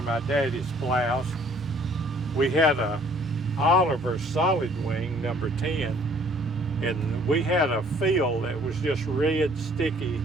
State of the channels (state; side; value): normal; both; correlation 0.58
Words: my daddy's plows. We had a Oliver solid wing number 10, and we had a field that was just red sticky